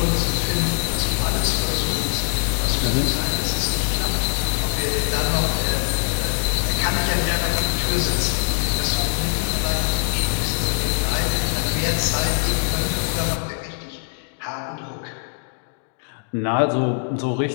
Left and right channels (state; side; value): silent; right; digital silence